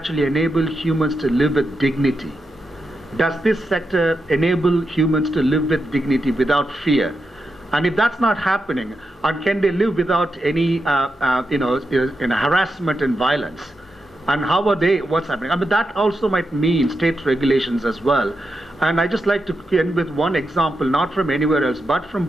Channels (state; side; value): normal; both; correlation 0.87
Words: enable humans to live with dignity? Does this sector enable humans to live with dignity without fear? And if that's not happening, or can they live without any harassment and violence? And how are they, what's happening? I mean, that also might mean state regulations as well. And I just like to end with one example, not from anywhere else, but from